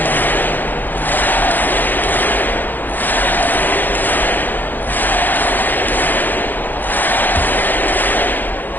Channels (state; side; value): late; right; 0.088 ms